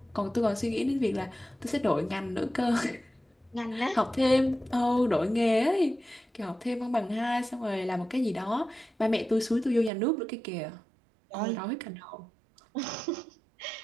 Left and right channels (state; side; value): drops out; left; at 9.9 s